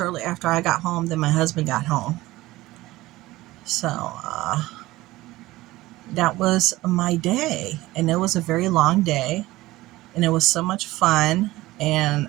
after I got home, then my husband got home. So, that was my day. And it was a very long day. And it was so much fun.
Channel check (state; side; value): quieter; left; 18.1 dB